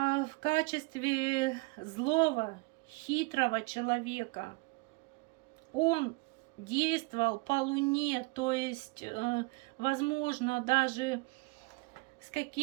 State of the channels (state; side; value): quieter; left; 26.8 dB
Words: в качестве злого, хитрого человека. Он действовал по луне, то есть, возможно, даже с